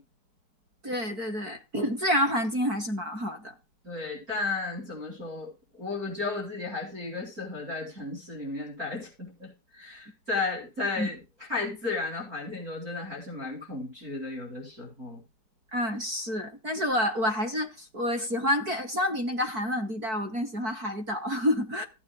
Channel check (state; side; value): late; left; 4.5 ms